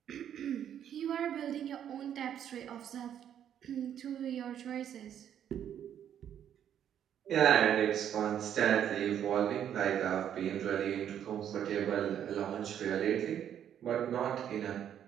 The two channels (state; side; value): quieter; left; 9.7 dB